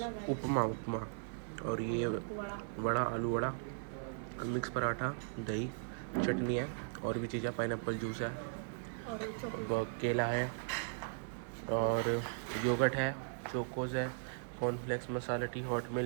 उपमा उपमा और ये वड़ा, आलू वड़ा, मिक्स पराठा, दही, चटनी है और भी चीज़ें, पाइनएप्पल जूस है और केला है और योगर्ट है, चोकोज है, कॉर्नफ्लेक्स, मसाला टी, हॉट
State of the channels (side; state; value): left; silent; digital silence